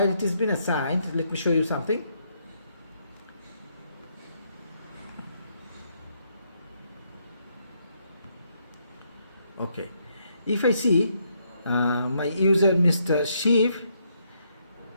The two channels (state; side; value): inverted; both; correlation -0.75